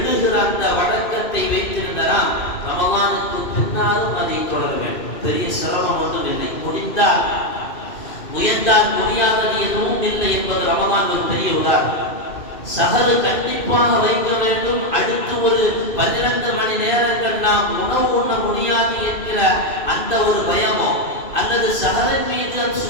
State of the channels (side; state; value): right; late; 2.5 ms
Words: அந்த வழக்கத்தை வைத்திருந்த நாம் ரமதானுக்கு பின்னாலும் அதை தொடர வேண்டும். பெரிய சிரமம் ஒன்றும் இல்லை. முடிந்தால் முயன்றால் முடியாதது எதுவும் இல்லை என்பது ரமதான் ஒரு பெரிய உதாரணம். சஹரு கண்டிப்பாக வைக்க வேண்டும். அடுத்து ஒரு 12 மணி நேரங்கள் நாம் உணவு உண்ண முடியாது என்கிற அந்த ஒரு பயமோ, அல்லது சஹரின் மீது